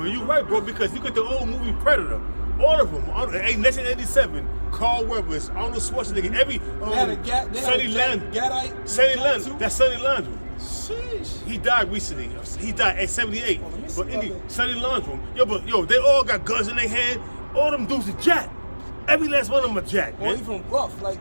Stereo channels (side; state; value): both; inverted; correlation -1.00